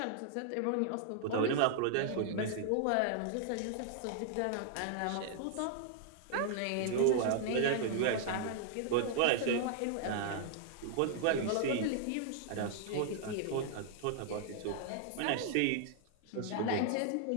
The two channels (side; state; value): both; different; correlation -0.01